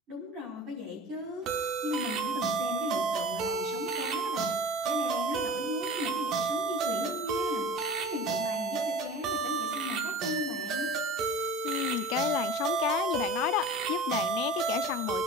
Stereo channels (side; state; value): both; normal; correlation 0.37